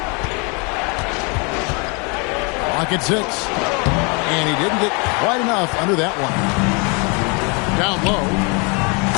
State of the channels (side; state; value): right; quieter; 32.2 dB